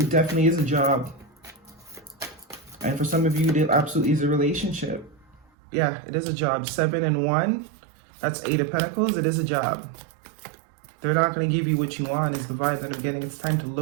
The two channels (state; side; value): drops out; left; at 5.5 s